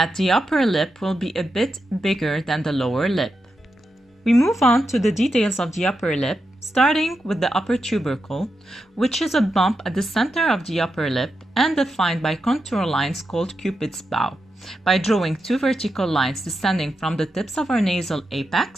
the upper lip will be a bit bigger than the lower lip. We move on to the details of the upper lip, starting with the upper tubercle, which is a bump at the center of the upper lip and defined by contour lines called Cupid's bow, by drawing 2 vertical lines descending from the tips of our nasal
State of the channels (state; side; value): normal; both; correlation 0.87